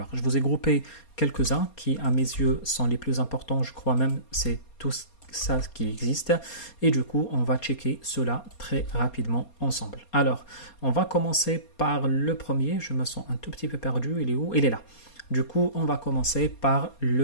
Je vous ai groupé quelques-uns qui, à mes yeux, sont les plus importants. Je crois même c'est tout ça qui existe. Et du coup, on va checker cela très rapidement ensemble. Alors, on va commencer par le premier. Je me sens un tout petit peu perdu. Il est où? Il est là. Du coup, on va commencer par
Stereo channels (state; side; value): late; right; 4.3 ms